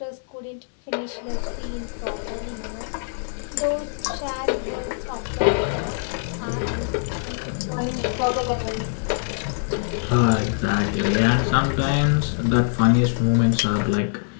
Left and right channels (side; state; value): right; silent; digital silence